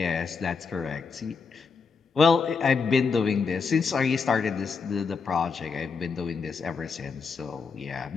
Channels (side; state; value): right; quieter; 5.2 dB